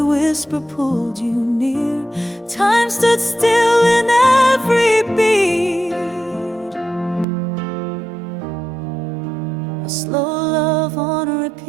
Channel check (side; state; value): left; drops out; at 7.2 s